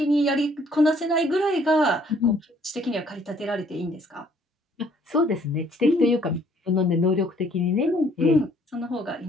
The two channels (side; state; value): both; normal; correlation 0.62